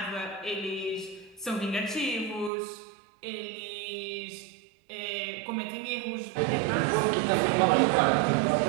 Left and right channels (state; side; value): drops out; left; at 2.5 s